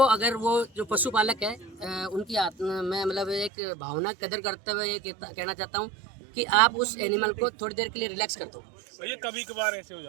अगर वो जो पशुपालक है उनकी मैं मतलब एक भावना कदर करते हुए ये कहना चाहता हूँ कि आप उस एनिमल को थोड़ी देर के लिए रिलैक्स कर दो। ये कभी कभार ऐसे हो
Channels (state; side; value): drops out; left; at 3.5 s